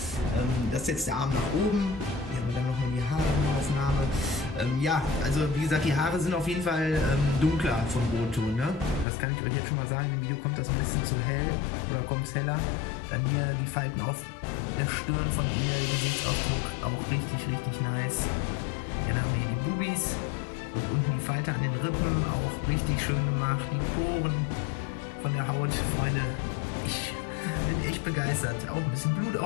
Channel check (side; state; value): right; drops out; at 9.1 s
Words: Das ist jetzt der Arm nach oben. Hier haben wir dann nochmal die Haaraufnahme. Ja, also wie gesagt, die Haare sind auf jeden Fall dunkler vom Rotton. Ne? Das kann ich euch jetzt schon mal sagen. Im Video kommt das ein bisschen zu hell oder kommt es heller. Dann hier die Falten auf der Stirn von ihr, Gesichtsausdruck auch richtig, richtig nice. Dann haben wir hier die Bubis und unten die Falte an den Rippen, auch richtig schön gemacht. Die Poren von der Haut, Freunde. Ich bin echt begeistert. Auch